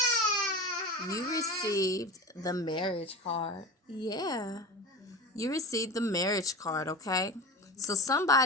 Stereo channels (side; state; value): both; normal; correlation 0.29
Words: You received the marriage card. Yeah. You received the marriage card, okay? So